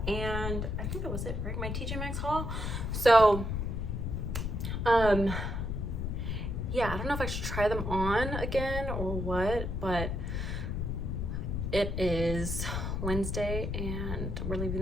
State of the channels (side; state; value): left; noise; rumble, 2 dB below the sound